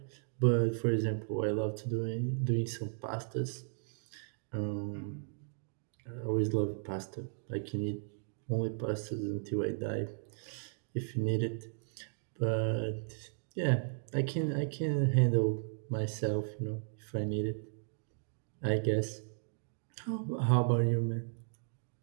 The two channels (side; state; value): left; silent; digital silence